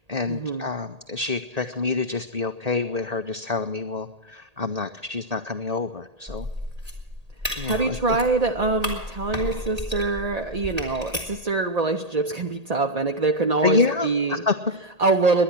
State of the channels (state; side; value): late; left; 1.8 ms